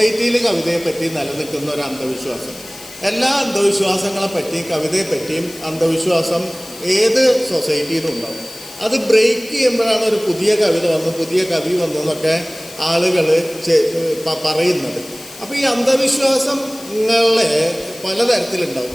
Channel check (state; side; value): noise; left; hiss, 17 dB below the sound